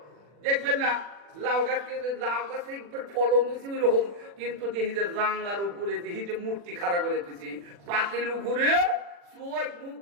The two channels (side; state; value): left; late; 40 ms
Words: দেখবেন না লাউ গাছকে, লাউ গাছে ফলন হয়েছে ওই রকম, কিন্তু দেখি যে জাংলার উপরে দেখি যে মূর্তি খাড়া করে দিয়েছি, পাতিল উপরে চোখ মুখ